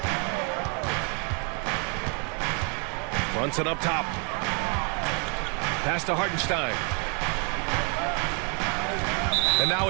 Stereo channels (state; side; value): quieter; left; 37.2 dB